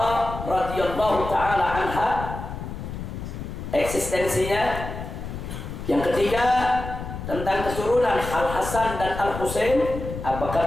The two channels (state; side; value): noise; left; rumble, 8 dB below the sound